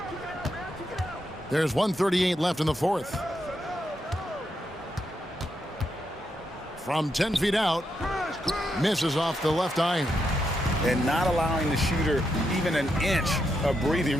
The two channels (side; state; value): both; normal; correlation 0.82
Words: There's 1:38 left in the 4th. From 10 feet out. Misses off the left iron. And not allowing the shooter even an inch of